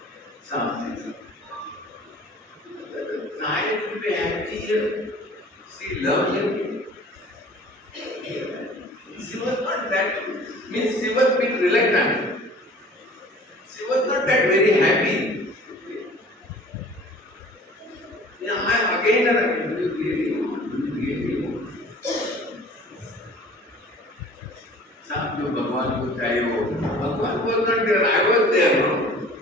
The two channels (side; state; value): both; normal; correlation 0.47